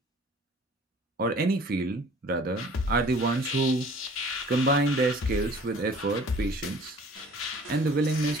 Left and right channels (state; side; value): normal; both; correlation 0.50